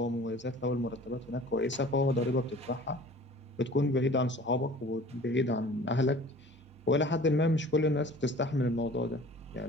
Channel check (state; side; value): normal; both; correlation 0.46